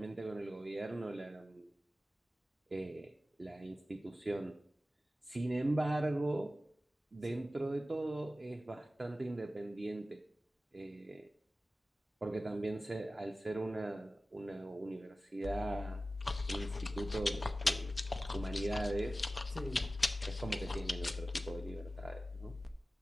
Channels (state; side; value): normal; both; correlation 0.95